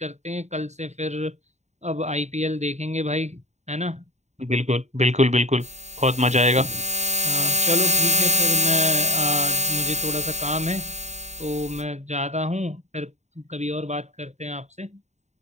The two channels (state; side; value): late; left; 0.33 ms